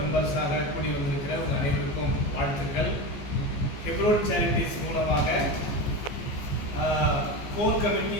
கூடி வந்திருக்கிற உங்கள் அனைவருக்கும் வாழ்த்துக்கள். ஹெப்ரோன் சேரிட்டிஸ் மூலமாக core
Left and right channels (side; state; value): right; late; 14 ms